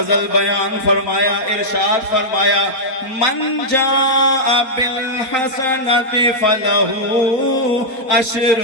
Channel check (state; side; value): late; right; 4.3 ms